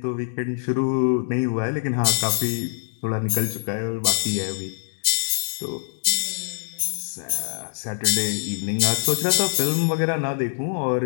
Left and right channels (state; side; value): silent; right; digital silence